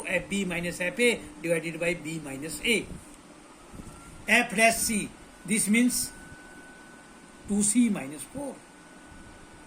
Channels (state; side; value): identical; both; correlation 1.00